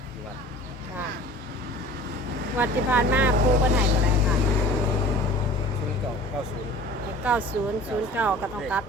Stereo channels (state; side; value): normal; both; correlation 0.44